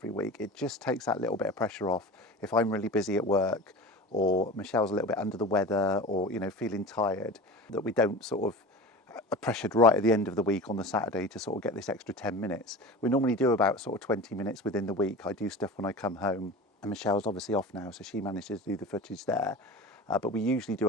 week. It just takes that little bit of pressure off if I'm really busy at work or Michelle's a little bit under the weather or, feeling tired, that we don't sort of are pressured right at the end of the week on the Saturday to sort of get this extra 10 minutes. We normally do about sort of 20 minutes within the week. I do stuff when I come home. And Michelle's obviously off now, so she manages to do the footage there. But we usually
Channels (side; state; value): both; normal; correlation 0.33